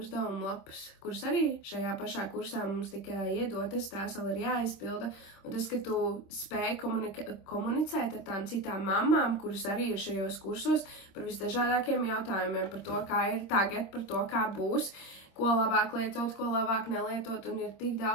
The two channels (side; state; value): right; late; 26 ms